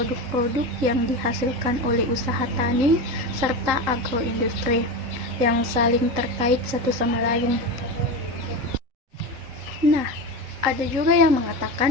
yang dihasilkan oleh usaha tani serta agroindustri yang saling terkait satu sama lain. Nah, ada juga yang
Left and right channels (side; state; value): left; late; 3.8 ms